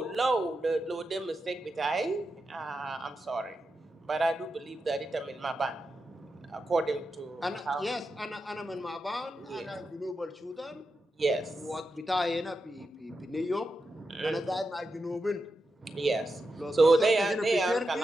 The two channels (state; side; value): normal; both; correlation 0.88